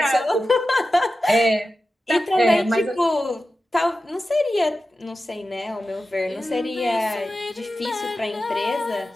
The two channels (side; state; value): both; normal; correlation 0.93